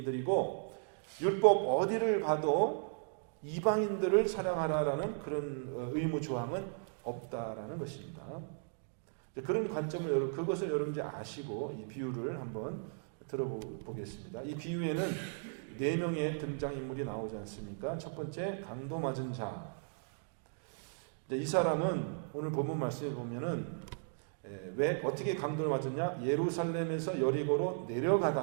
율법 어디를 봐도 이방인들을 사랑하라라는 그런 의무 조항은 없다라는 것입니다. 그런 관점을 그것을 여러분 이제 아시고 이 비유를 한번 들어보겠습니다. 이 비유에는 4명의 등장인물이 나오지 않습니까? 첫 번째 강도 맞은 자. 이 사람은 오늘 본문 말씀에 보면은 왜 어떻게 강도를 맞았냐? 예루살렘에서 여리고로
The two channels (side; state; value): left; silent; digital silence